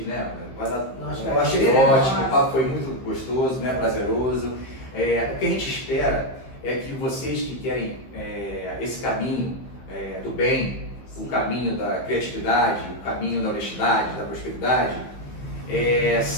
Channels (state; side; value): late; right; 15 ms